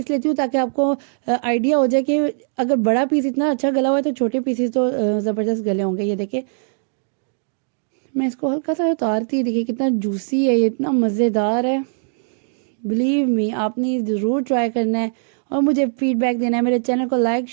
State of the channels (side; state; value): left; silent; digital silence